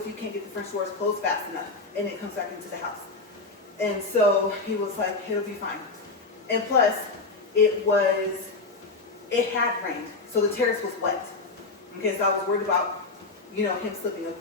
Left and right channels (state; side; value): quieter; right; 3.7 dB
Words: you can't get the French doors closed fast enough, and it comes back into the house? And so he was like, it'll be fine. And plus, it had rained, so the terrace was wet. Okay, so I was worried about, you know, him slipping. Of